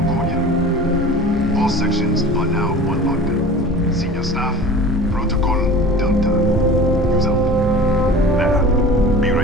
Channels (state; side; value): normal; both; correlation 0.39